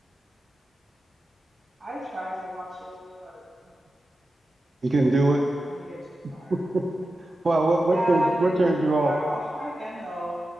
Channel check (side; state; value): both; normal; correlation 0.92